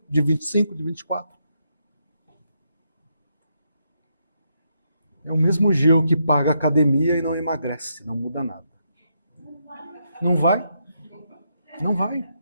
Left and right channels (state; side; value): inverted; both; correlation -0.79